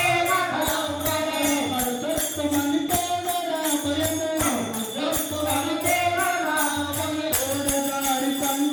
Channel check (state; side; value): identical; both; correlation 1.00